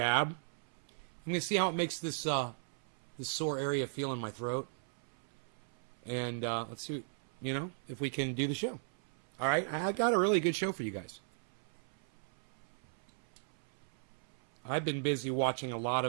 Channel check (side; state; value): left; silent; 53 dB below the other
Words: I'm going to see how it makes this sore area feel in my throat. And let's see, you know, if we can do the show. All right, I got a really good show for you guys. I've been busy watching a lot